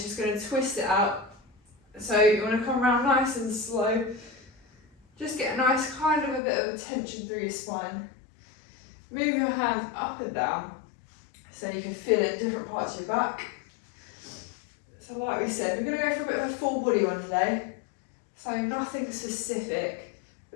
going to twist it out. So you want to come around nice and slow. Just get a nice kind of a bit of a tension through your spine. Move your hands up and down so you can feel it in different parts of your back. So like we said, we're going to go for a bit of a full body one today. So nothing specific,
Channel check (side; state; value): right; drops out; at 6.4 s